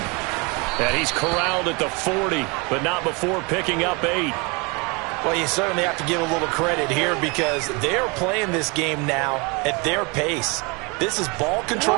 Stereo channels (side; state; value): left; quieter; 29.1 dB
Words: And he's corralled at the 40, but not before picking up 8. Well, you certainly have to give a little credit here because they're playing this game now at their pace. This is ball